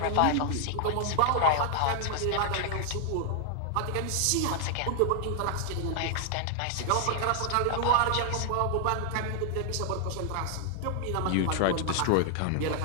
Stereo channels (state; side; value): different; both; correlation 0.00